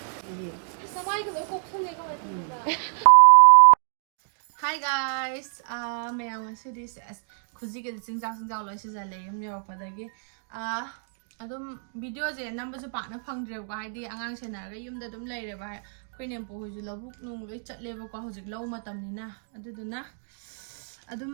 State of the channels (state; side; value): silent; left; 60 dB below the other